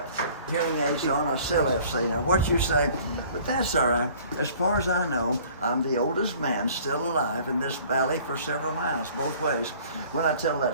hearing aids on, I still have to say. Now, what you say, but that's all right. As far as I know, I'm the oldest man still alive in this valley for several miles, both ways. When I tell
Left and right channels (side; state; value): both; inverted; correlation -0.52